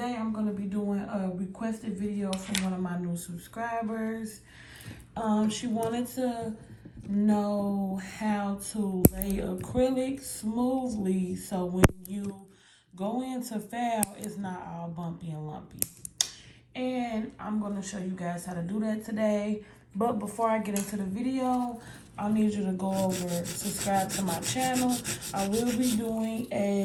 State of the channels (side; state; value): both; identical; correlation 1.00